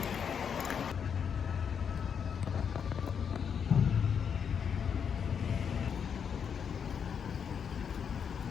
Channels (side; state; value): right; quieter; 7.2 dB